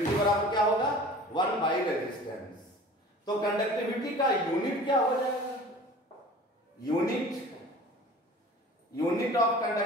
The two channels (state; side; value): normal; both; correlation 0.43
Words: बराबर क्या होगा? 1 बाई रेजिस्टेंस। तो कंडक्टिविटी का यूनिट क्या हो जाएगा? यूनिट ऑफ